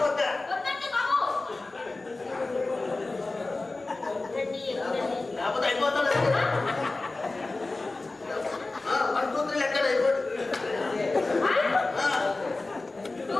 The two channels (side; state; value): right; quieter; 3.3 dB